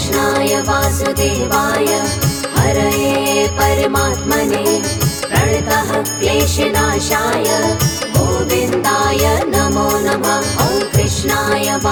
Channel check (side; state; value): both; identical; correlation 1.00